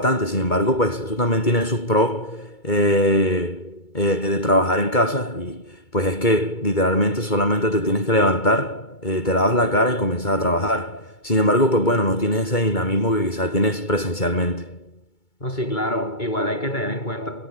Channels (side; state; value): right; late; 2.2 ms